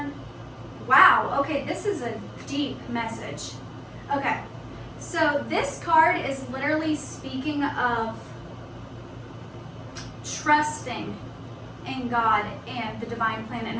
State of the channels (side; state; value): both; identical; correlation 1.00